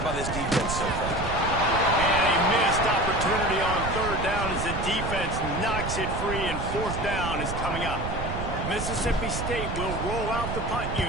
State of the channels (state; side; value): noise; right; rumble, 5 dB below the sound